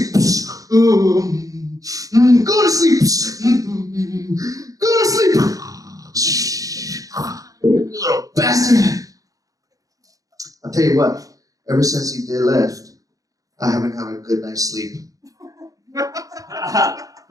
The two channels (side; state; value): left; late; 0.17 ms